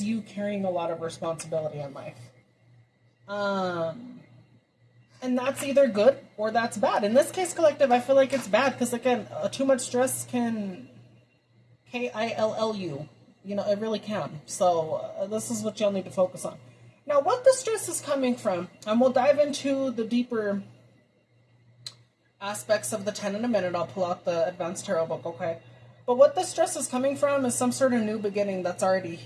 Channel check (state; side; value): identical; both; correlation 1.00